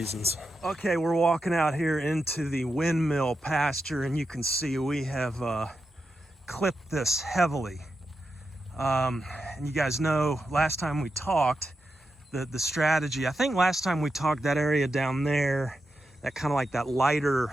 Okay, we're walking out here into the windmill pasture, and you can see we have clipped this heavily. And you guys know last time we talked, the strategy, I think last time we talked, that area down there, that kind of like that lighter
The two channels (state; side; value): normal; both; correlation 0.88